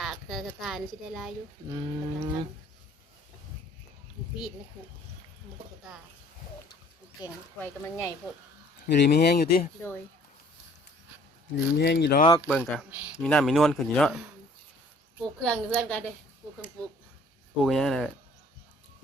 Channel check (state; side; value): normal; both; correlation 0.56